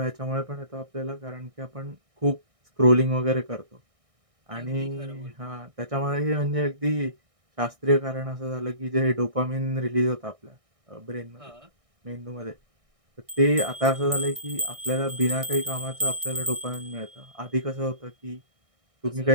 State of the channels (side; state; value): left; late; 1.6 ms